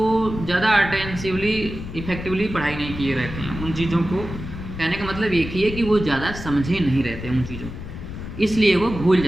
ज़्यादा अटेंसिवली इफ़ेक्टिवली पढ़ाई नहीं किए रहते हैं उन चीज़ों को। कहने का मतलब एक ही है कि वो ज़्यादा समझे नहीं रहते हैं उन चीज़ों को, इसलिए वो भूल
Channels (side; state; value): left; noise; rumble, 9 dB below the sound